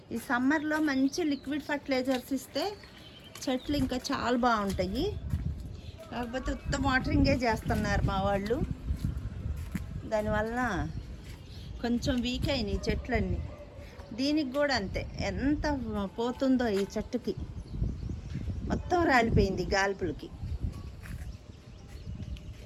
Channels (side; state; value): both; identical; correlation 1.00